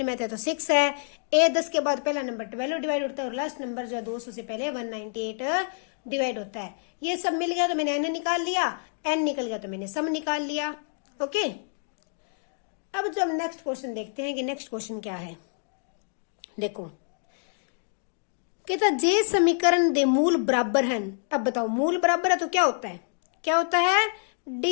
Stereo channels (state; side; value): silent; right; digital silence